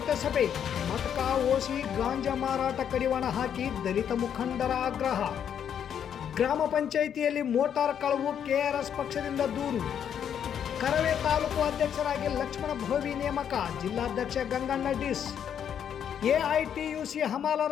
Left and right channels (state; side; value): quieter; right; 8.7 dB